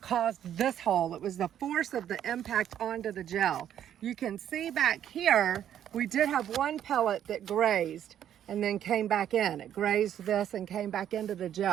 caused this hole. It was the force of the impact onto the gel. You can see back here, we did have one pellet that grazed and then came back in. It grazed this and came back into the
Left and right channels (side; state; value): left; quieter; 10.3 dB